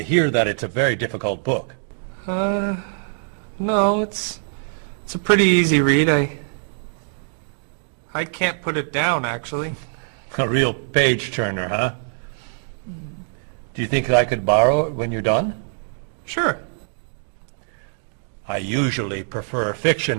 hear that it's a very difficult book. No, it's a pretty easy read. I can't put it down, actually. A real page-turner, huh? Do you think I could borrow it when you're done? Sure. I usually prefer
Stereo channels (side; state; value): left; silent; digital silence